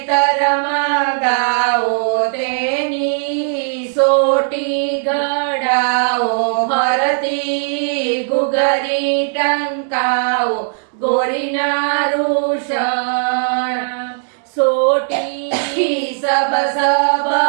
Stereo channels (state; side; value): silent; left; digital silence